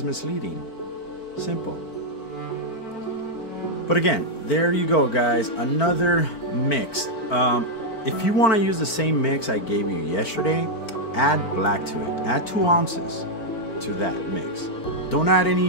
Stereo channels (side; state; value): right; late; 4.4 ms